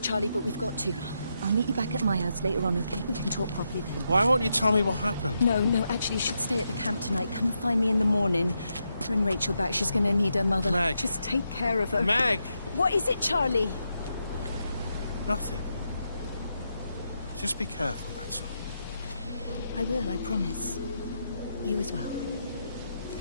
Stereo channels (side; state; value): both; inverted; correlation -0.83